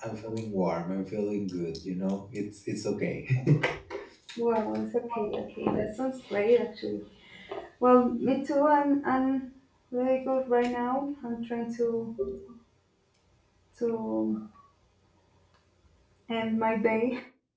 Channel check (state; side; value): identical; both; correlation 1.00